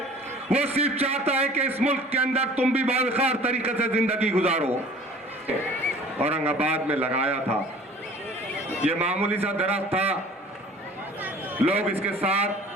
वो सिर्फ चाहता है कि इस मुल्क के अंदर तुम भी बावखार तरीके से जिंदगी गुजारो। औरंगाबाद में लगाया था, ये मामूली सा दरख्त था, लोग इसके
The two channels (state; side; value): normal; both; correlation 0.47